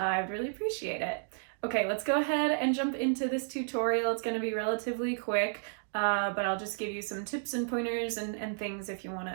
would really appreciate it. Okay, let's go ahead and jump into this tutorial. It's going to be relatively quick. But I'll just give you some tips and pointers and things if you want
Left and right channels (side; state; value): left; silent; digital silence